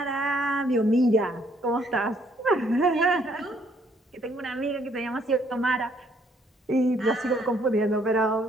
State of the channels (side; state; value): both; normal; correlation 0.67